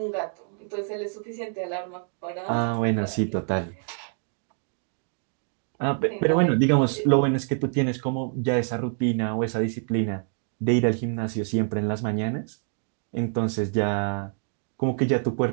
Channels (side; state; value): left; silent; 61 dB below the other